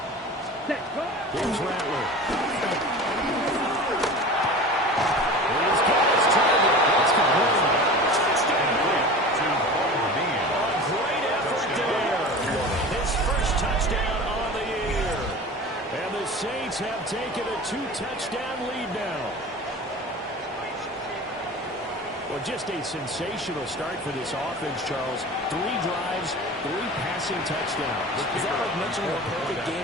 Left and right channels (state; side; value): normal; both; correlation 0.36